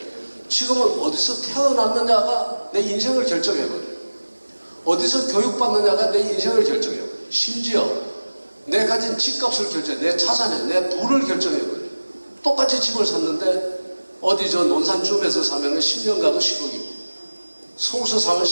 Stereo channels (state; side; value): inverted; both; correlation -1.00